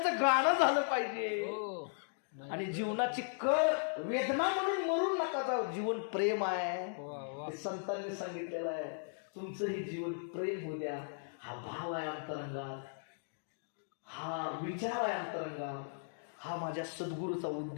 गाणं झालं पाहिजे. आणि जीवनाची कळ वेदना म्हणून मरून नका जाऊ. जीवन प्रेम आहे, संतांनी सांगितलेलं आहे. तुमचंही जीवन प्रेम होऊ द्या. हा भाव आहे अंतरंगात, हा विचार आहे अंतरंगात, हा माझ्या सद्गुरूचा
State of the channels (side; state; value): right; silent; digital silence